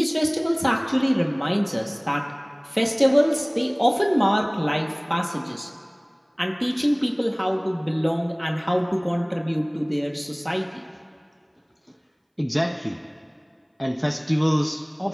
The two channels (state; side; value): identical; both; correlation 1.00